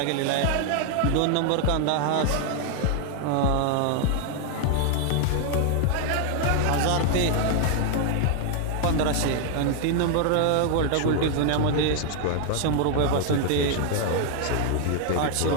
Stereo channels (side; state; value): both; different; correlation 0.00